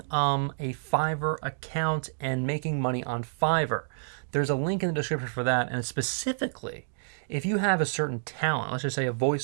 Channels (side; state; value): left; silent; digital silence